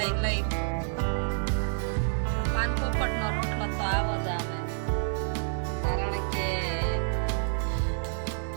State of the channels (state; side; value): silent; left; 59 dB below the other